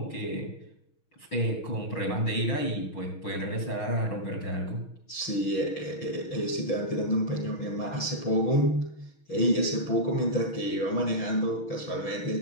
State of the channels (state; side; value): late; right; 6.3 ms